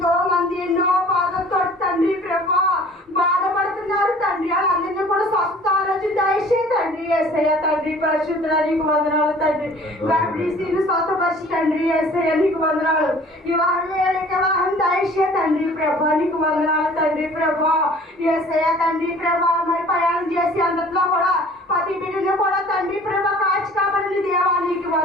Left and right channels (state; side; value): normal; both; correlation 0.50